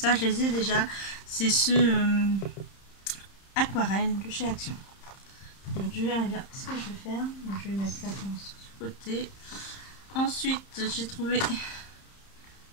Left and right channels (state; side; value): late; right; 30 ms